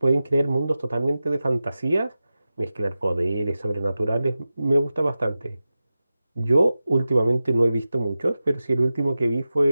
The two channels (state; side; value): inverted; both; correlation -0.94